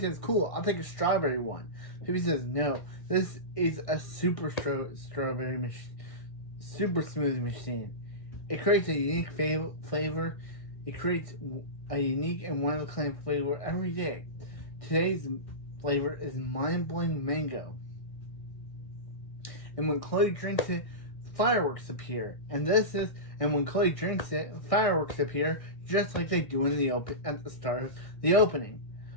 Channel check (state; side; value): late; right; 1.6 ms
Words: cool, I'll take a strawberry one. Phoebe says, no, this is a super strawberry machine, super smoothie machine. It creates a unique flavor. It creates a unique and one-of-a-kind flavor every day. Today's flavor is mind-blowing mango. And when Chloe drinks it, fireworks appear. And when Chloe drinks it, fireworks appear just like they do at the start of the opening.